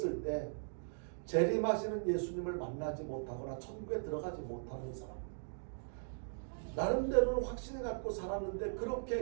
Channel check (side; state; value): left; silent; digital silence